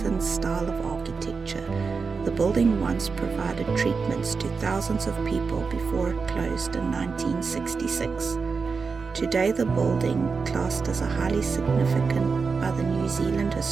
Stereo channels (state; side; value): quieter; left; 4.9 dB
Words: style of architecture, the building once provided treatments to thousands of people before it closed in 1966. Today, the building, classed as a highly significant by the New Zealand